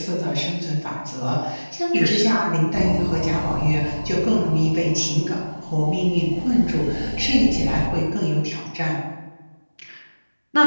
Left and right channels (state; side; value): inverted; both; correlation -1.00